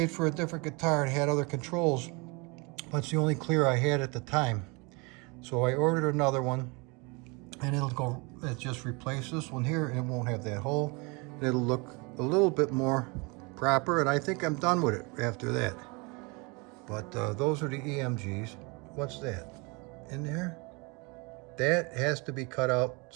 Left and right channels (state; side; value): quieter; left; 28.9 dB